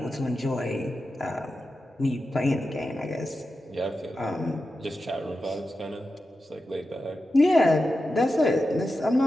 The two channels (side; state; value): both; normal; correlation 0.91